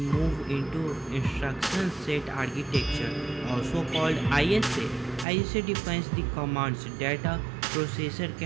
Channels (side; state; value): left; drops out; at 5.2 s